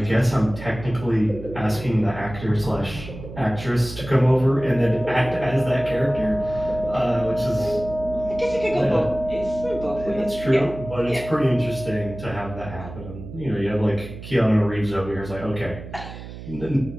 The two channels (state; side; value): noise; right; hum, 12 dB below the sound